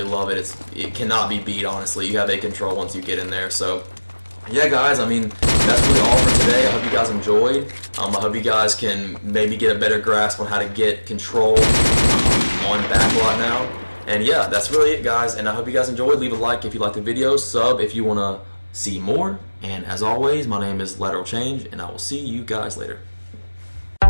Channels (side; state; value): both; inverted; correlation -1.00